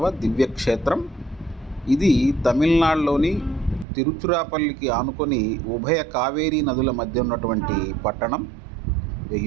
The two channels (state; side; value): drops out; left; at 3.9 s